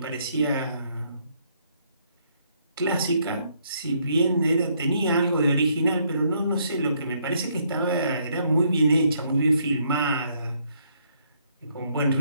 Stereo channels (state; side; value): inverted; both; correlation -0.70